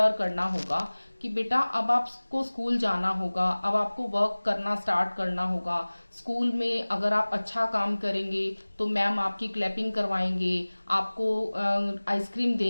करना होगा कि बेटा अब आपको स्कूल जाना होगा, अब आपको वर्क करना स्टार्ट करना होगा। स्कूल में अगर आप अच्छा काम करेंगे तो मैम आपकी क्लैपिंग करवाएंगे, आपको आइसक्रीम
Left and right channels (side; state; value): both; inverted; correlation -1.00